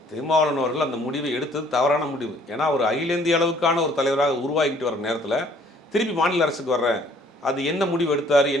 திருமாவளவன் அவர்கள் அந்த முடிவை எடுத்தது தவறான முடிவு. ஏன்னா ஒரு அகில இந்திய அளவுக்கான ஒரு தலைவராக உருவாக்கிட்டு வர நேரத்தில் திருப்பி மாநில அரசுக்கு வர்றேன், அது என்ன முடிவு எடுத்தார்,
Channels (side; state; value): both; normal; correlation 0.59